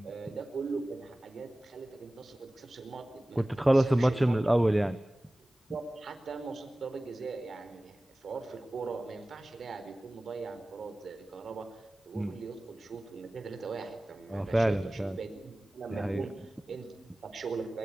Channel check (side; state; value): both; normal; correlation 0.97